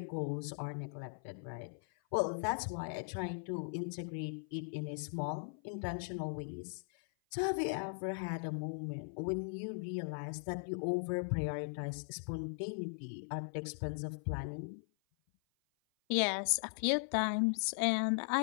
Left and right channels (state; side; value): silent; right; 52 dB below the other